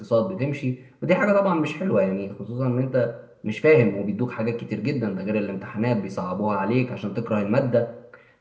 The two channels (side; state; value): both; identical; correlation 1.00